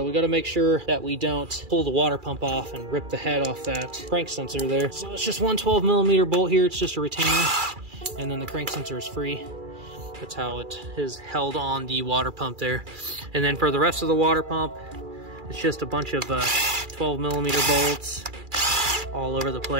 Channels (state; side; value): late; left; 2.4 ms